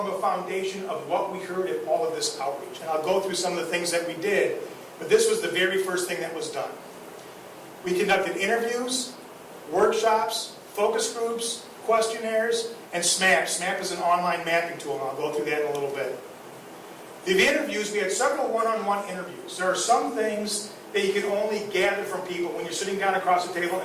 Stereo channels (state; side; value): identical; both; correlation 1.00